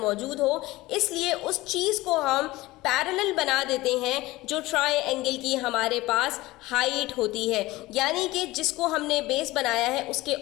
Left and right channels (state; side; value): quieter; right; 19.2 dB